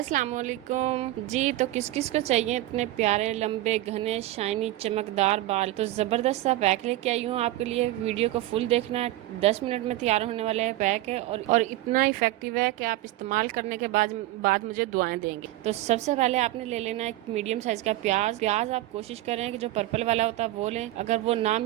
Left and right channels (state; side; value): quieter; left; 16.2 dB